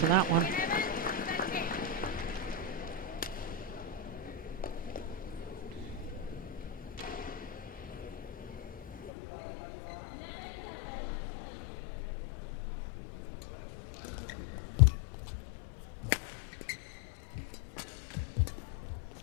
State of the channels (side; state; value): right; drops out; at 9.1 s